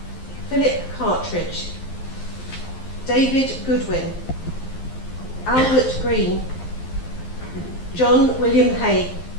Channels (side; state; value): right; late; 12 ms